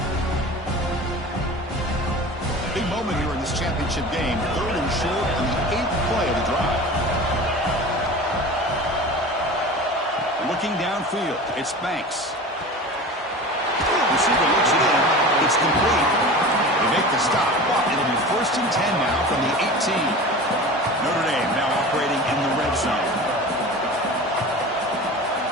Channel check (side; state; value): both; normal; correlation 0.35